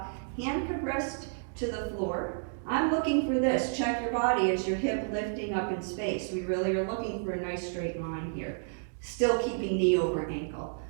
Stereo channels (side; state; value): left; silent; digital silence